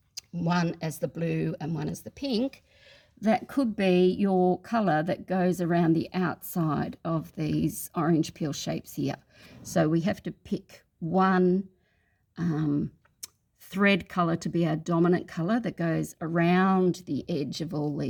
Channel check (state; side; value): identical; both; correlation 1.00